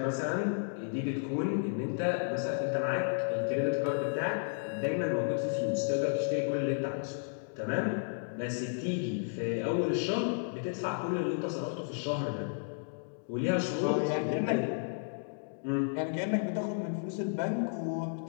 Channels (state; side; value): silent; right; digital silence